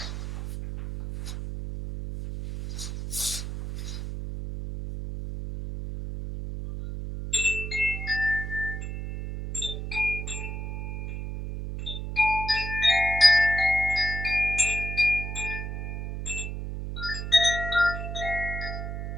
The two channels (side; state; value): right; noise; hum, 5 dB below the sound